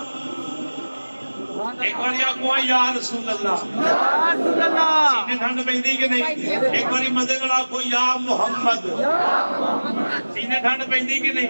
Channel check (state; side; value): inverted; both; correlation -1.00